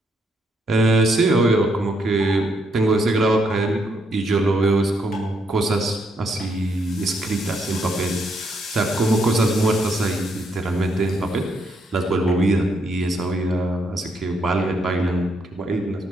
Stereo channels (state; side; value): normal; both; correlation 0.75